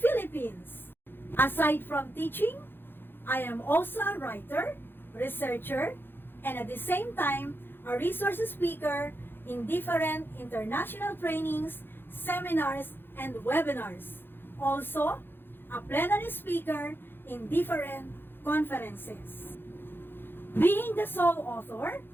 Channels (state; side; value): late; right; 0.10 ms